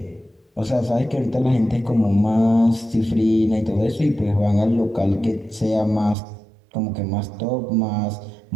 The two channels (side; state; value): left; drops out; at 6.2 s